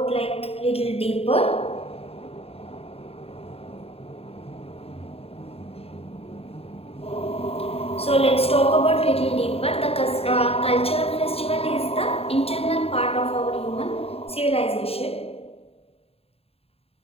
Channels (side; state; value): right; late; 0.29 ms